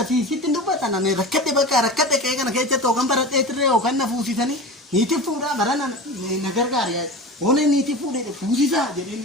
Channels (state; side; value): normal; both; correlation 0.31